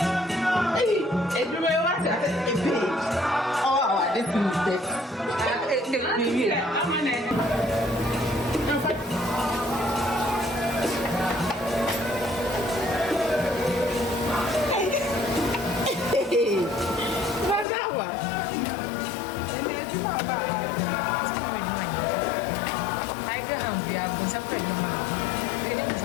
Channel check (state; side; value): drops out; right; at 17.7 s